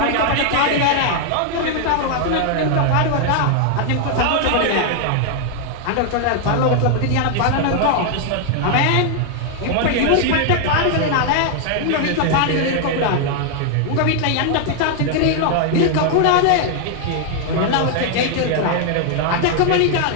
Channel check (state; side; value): different; both; correlation 0.00